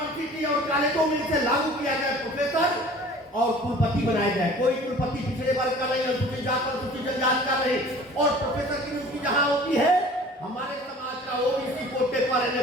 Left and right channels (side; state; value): both; normal; correlation 0.46